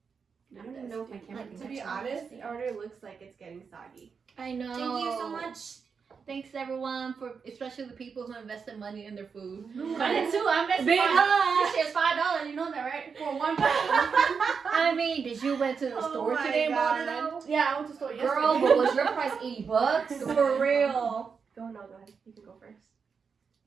I don't even know if my camera can To be honest, it already looks like it's getting soggy. I know. Thank you so much. Thanks everyone, especially the people who invested money in their food. I did too. I invested Big this shit's $5. You know that, right? For one pound. I mean, did you went to the store my today and bought it God. out? Yeah, I went to the store yesterday. Girl, but was your price $80? For real. Go ahead. You can go first.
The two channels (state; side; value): quieter; left; 5.8 dB